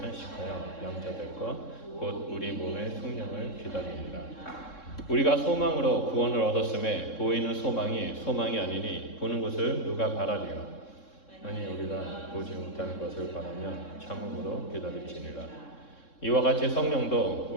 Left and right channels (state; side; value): late; right; 3.7 ms